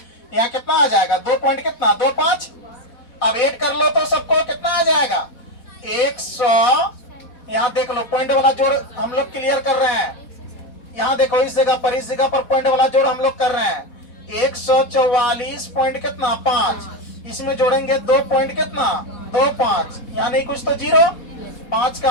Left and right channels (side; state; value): right; late; 4.2 ms